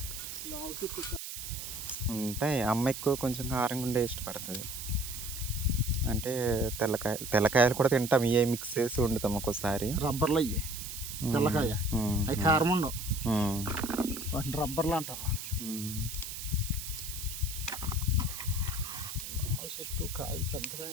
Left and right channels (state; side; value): noise; right; hiss, 8 dB below the sound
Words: ఉంటాయి. అమ్మ ఎక్కువ కొంచెం కారంగా ఉండే ఇష్టపడుతుంది. అంటే తెల్లకాయలు కూడా తింటాం, ఇవే మిక్స్ చేసి వండుతాం ఒక్కోసారి. రబ్బర్లు అయ్యి తెల్లకాయ అవి కారం ఉండవు, వాటిని రబ్బర్లు అంటారు. చెట్టు కాయ పెద్దకాయ